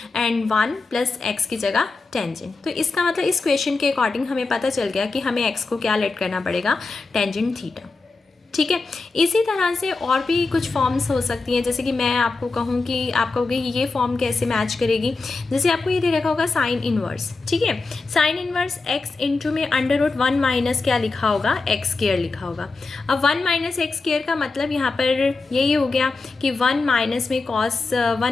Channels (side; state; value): right; quieter; 3.9 dB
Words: एंड 1 प्लस एक्स की जगह टेंजेंट। तो इसका मतलब इस क्वेश्चन के अकॉर्डिंग हमें पता चल गया कि हमें एक्स को क्या लेट करना पड़ेगा, टेंजेंट थीटा, ठीक है। इसी तरह से और भी कुछ फॉर्म्स हो सकती हैं। जैसे कि मैं आपको कहूँ कि आप कहोगे कि ये फॉर्म कैसे मैच करेगी। जैसे आपको ये दे रखा होगा साइन इनवर्स, ठीक है। साइन इनवर्स एक्स इंटू में अंडर रूट 1 माइनस क्या लिखा होगा, एक्स स्क्वायर लिखा होगा। अब 1 माइनस एक्स स्क्वायर का मतलब यहाँ पर यही हो गया कि 1 माइनस में कॉस